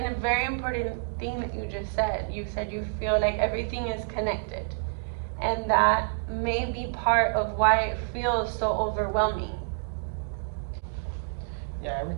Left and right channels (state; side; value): silent; left; digital silence